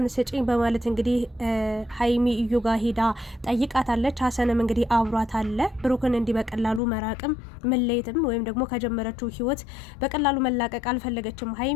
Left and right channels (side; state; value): right; drops out; at 6.8 s